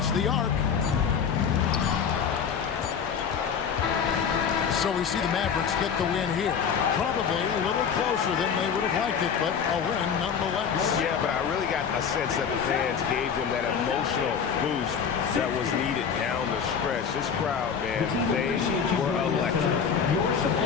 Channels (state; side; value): quieter; right; 6.9 dB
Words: the arc. So we see the Mavericks get the win here. Probably a little closer than they would have liked it, but a win nonetheless. Yeah, but I really got a sense that the fans gave them that emotional boost that was needed down the stretch. This crowd, man, they were electric.